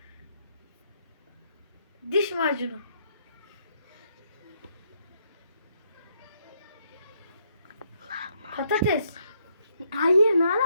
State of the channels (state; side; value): inverted; both; correlation -0.73